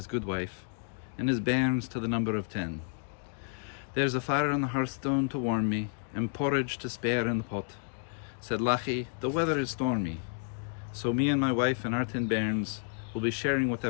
good wife, and his bairns to the number of 10. There's a fire on the hearthstone to warm me, and porridge to spare in the pot. Said Lachie, the weather is stormy, so me and my wife and our 10 bairns will be sharing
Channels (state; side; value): silent; right; 57 dB below the other